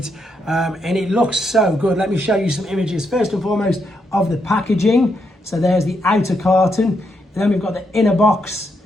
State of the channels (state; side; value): normal; both; correlation 0.79